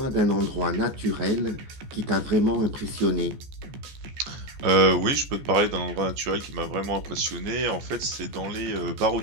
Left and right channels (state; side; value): late; left; 14 ms